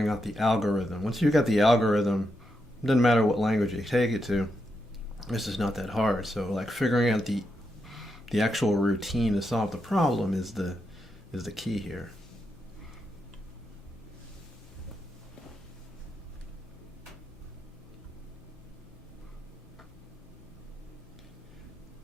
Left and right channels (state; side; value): normal; both; correlation 0.83